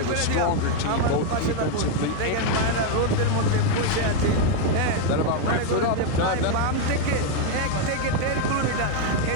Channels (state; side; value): different; both; correlation 0.01